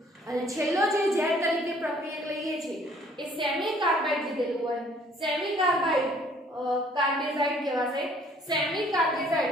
અને છેલ્લો જે Z તરીકે પ્રક્રિયક લઈએ છીએ એ સેમી કાર્બાઇડ લીધેલું હોય. સેમી કાર્બાઇડ કાર્બેઝાઇડ કહેવાશે. સેમી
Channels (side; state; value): both; normal; correlation 0.59